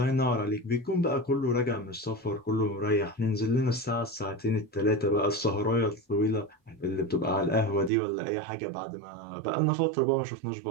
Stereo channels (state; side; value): drops out; left; at 7.9 s